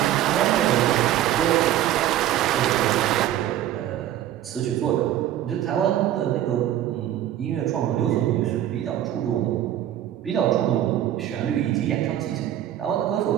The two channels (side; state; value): left; quieter; 12.1 dB